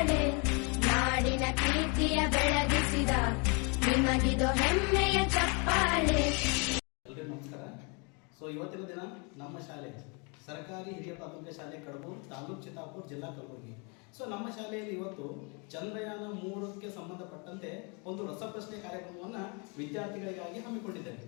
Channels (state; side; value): quieter; right; 32.9 dB